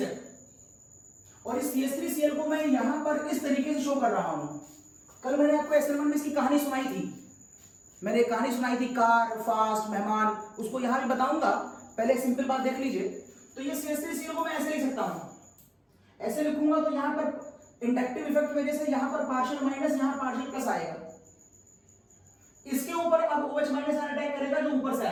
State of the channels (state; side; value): identical; both; correlation 1.00